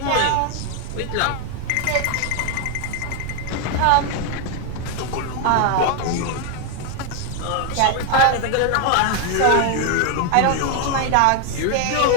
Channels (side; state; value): both; different; correlation 0.01